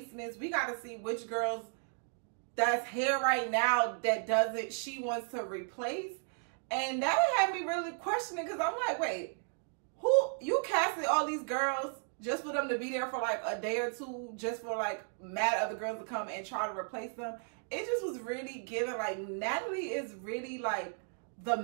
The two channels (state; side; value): silent; left; 55 dB below the other